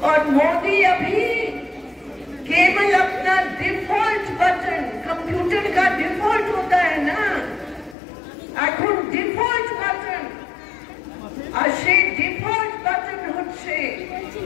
और मोदी अभी केवल अपना डिफॉल्ट बटन, कंप्यूटर का डिफॉल्ट होता है ना, এখন ডিফল্ট বাটন, আর সেই ডিফল্ট বাটন হচ্ছে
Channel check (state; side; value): drops out; right; at 8.0 s